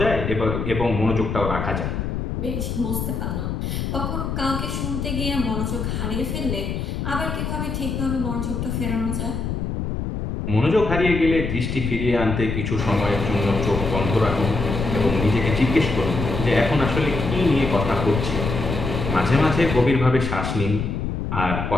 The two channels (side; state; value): left; noise; rumble, 3 dB below the sound